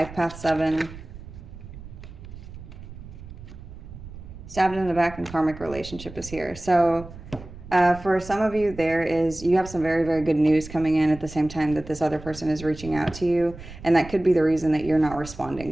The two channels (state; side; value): noise; right; rumble, 15 dB below the sound